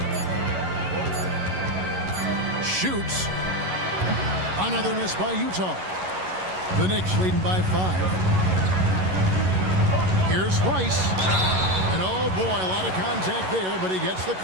Shoots. Another miss by Utah. The Knicks leading by 5. Here's Rice. And oh boy, a lot of contact there, but he gets the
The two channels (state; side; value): late; left; 11 ms